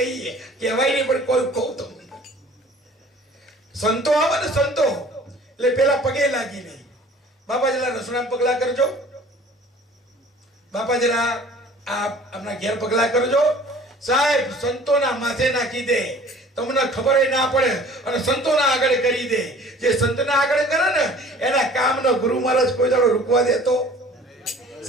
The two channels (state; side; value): normal; both; correlation 0.49